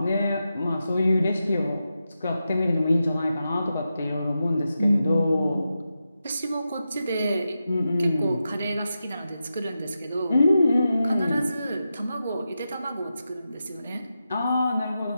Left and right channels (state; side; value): inverted; both; correlation -0.89